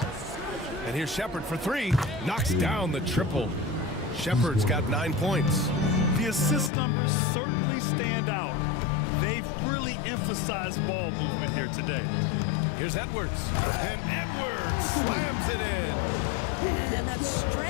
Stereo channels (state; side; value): drops out; right; at 6.7 s